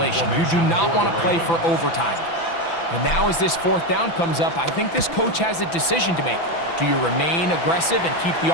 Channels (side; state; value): right; late; 6.0 ms